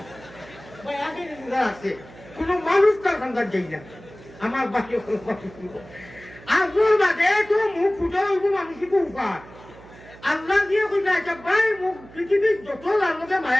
ভাই আগে রোজা রাখছে কোনো মানুষ তার খান্দার যাই না আমার বাকি আসল বাদে তো মুখ ফুটা হইব মানুষই খুব উপার আল্লাহ দিয়ে কইতা আচ্ছা ভাই মুখ পৃথিবীর যত লালকে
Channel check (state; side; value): noise; right; hum, 20 dB below the sound